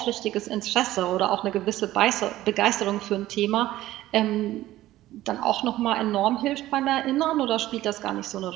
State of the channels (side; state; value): left; quieter; 15.3 dB